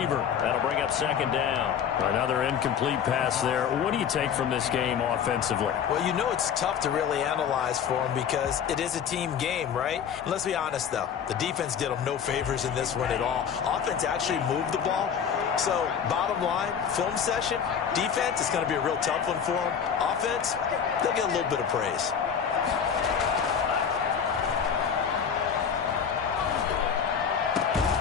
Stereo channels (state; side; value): quieter; right; 7.6 dB